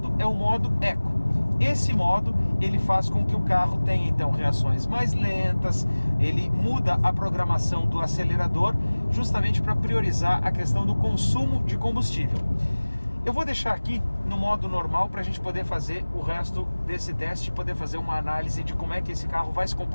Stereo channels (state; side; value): inverted; both; correlation -1.00